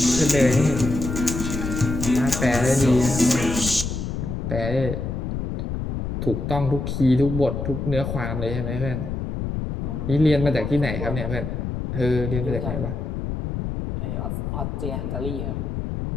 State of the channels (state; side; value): noise; left; rumble, 3 dB below the sound